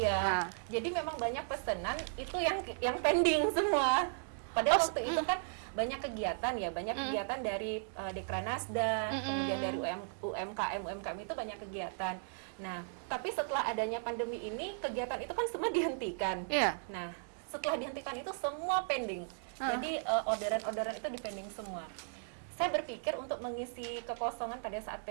Jadi memang banyak pesanan itu yang pending semua. Padahal waktu itu kan banyak kegiatan dari Dekranasda, kemudian dari UMKM itu banyak kegiatan. Nah, tapi setelah adanya pandemi ini kegiatan itu kan semua dihentikan. Iya. Nah, setelah dihentikan itu semua pending. Jadi orderan-orderan itu dipending semua. Saya berpikir untuk mengisi kekosongan pada saat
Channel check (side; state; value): left; silent; digital silence